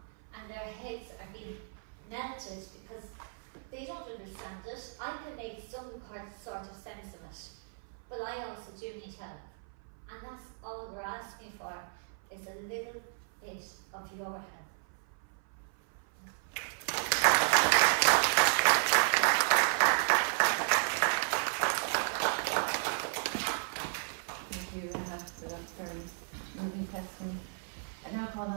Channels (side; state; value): left; silent; 55 dB below the other